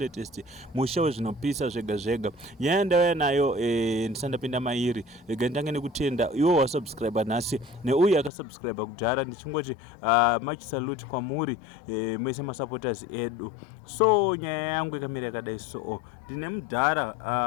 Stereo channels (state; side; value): drops out; right; at 8.3 s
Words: musha zvinopisa zvega zvega. Nyaya ndauya nayo ndisandapinda mairi. Ndange nekutenda iwo wasubscribe nhasi neuye akasubscribe kudhara, ndichingoti much salute kwamuri mese masupporters edu. So nyaya yangu ikamira yakadai so. Ndine Mudhara